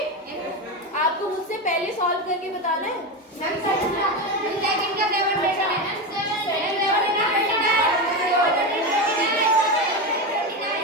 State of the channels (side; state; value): both; normal; correlation 0.17